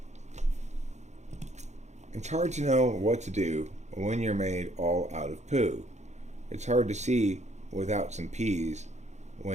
It's hard to know what to do when you're made all out of poo. It's hard to see without some peas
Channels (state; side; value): late; left; 0.33 ms